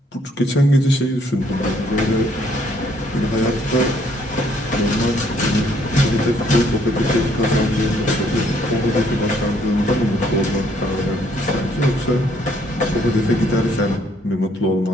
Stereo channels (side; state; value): both; normal; correlation 0.66